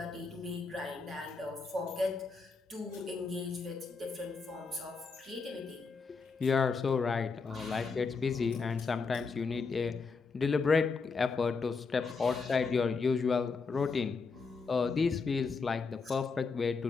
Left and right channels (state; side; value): quieter; right; 4.7 dB